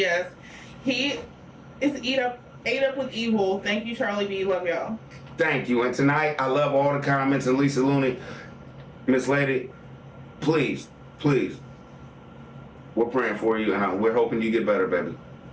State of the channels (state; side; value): identical; both; correlation 1.00